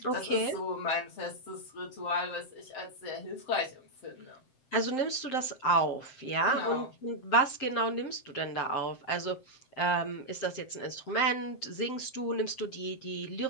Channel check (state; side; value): late; right; 7.6 ms